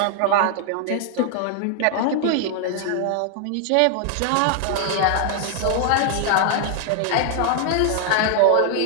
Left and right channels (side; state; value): both; different; correlation 0.00